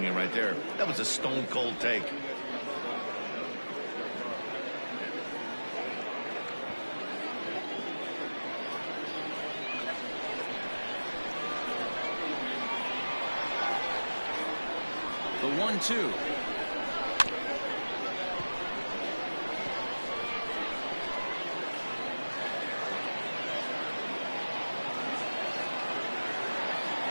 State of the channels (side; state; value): both; inverted; correlation -1.00